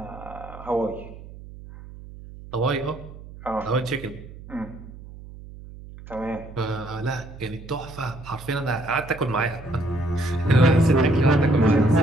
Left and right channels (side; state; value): right; noise; hum, 16 dB below the sound